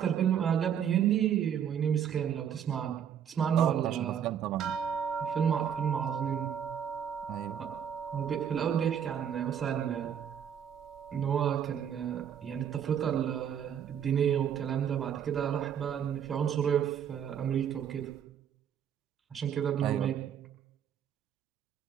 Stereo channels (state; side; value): quieter; left; 8.7 dB